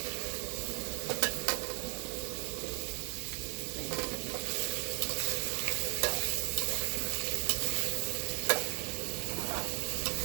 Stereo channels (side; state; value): left; quieter; 36.8 dB